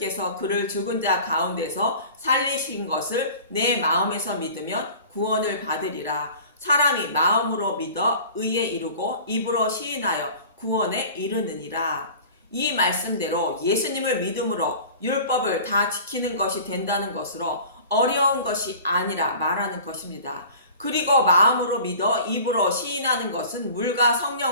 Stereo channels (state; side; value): inverted; both; correlation -0.42